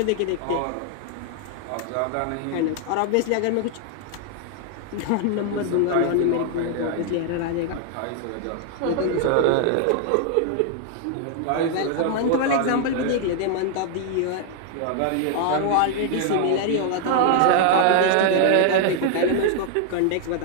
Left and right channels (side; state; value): both; different; correlation 0.00